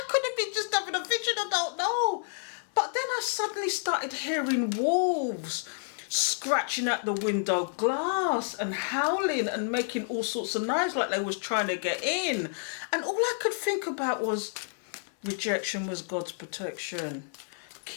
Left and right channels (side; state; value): right; silent; 58 dB below the other